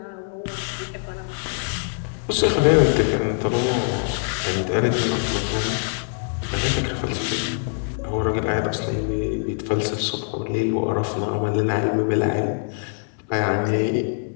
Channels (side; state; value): right; silent; 63 dB below the other